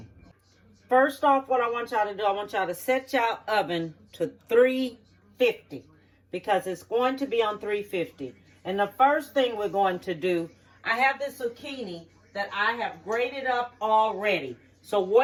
First off, what I want y'all to do, I want y'all to set y'all oven to 350 because it's going to be on 350. And the first thing we're going to do, I have this zucchini that I have grated up already. So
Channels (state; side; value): identical; both; correlation 1.00